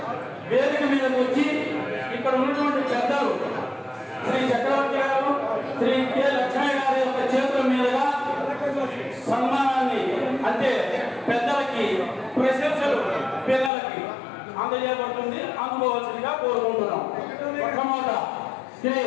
వేదిక మీదకి వచ్చి ఇక్కడ ఉన్నటువంటి పెద్దలు శ్రీ చక్రవర్తి గారు, శ్రీ కె లక్ష్మీ గారి యొక్క చేతుల మీదుగా సన్మానాన్ని, అంటే పెద్దలకి ప్రశంసలు పిల్లలకి అందజేయబడుతుంది. అందుకోవాల్సిందిగా కోరుకుంటున్నాం. మొట్టమొదట శ్రీ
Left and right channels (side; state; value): right; drops out; at 13.7 s